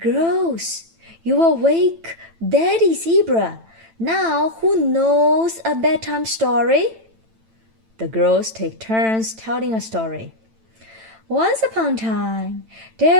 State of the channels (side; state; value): left; late; 9.0 ms